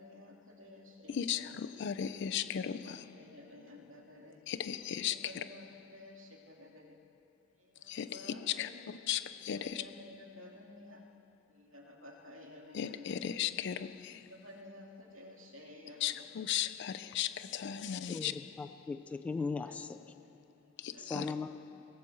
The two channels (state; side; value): quieter; right; 7.8 dB